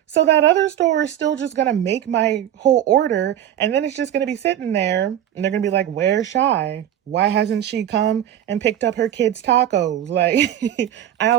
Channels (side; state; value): left; quieter; 11.2 dB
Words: So that other store is still just gonna make my whole order, and then it's just gonna be sitting there, and they're gonna be like, "Where's Shy? Why hasn't she come and picked up her kids' tacos?" Like, I